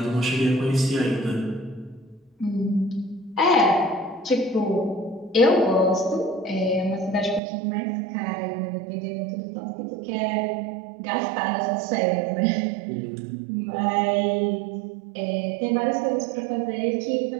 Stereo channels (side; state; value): left; drops out; at 7.4 s